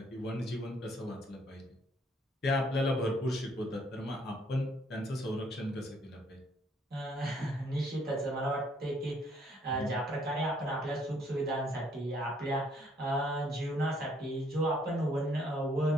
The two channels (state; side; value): normal; both; correlation 0.66